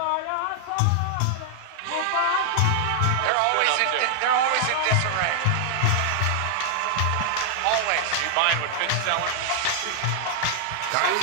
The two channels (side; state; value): both; different; correlation 0.00